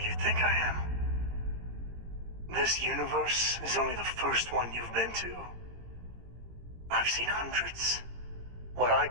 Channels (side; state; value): left; late; 18 ms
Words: you think I am. This universe is only the first one you've been to. I've seen hundreds. Where I